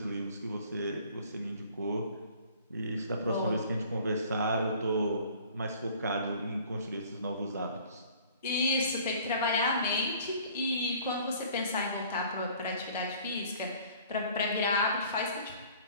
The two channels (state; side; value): inverted; both; correlation -0.52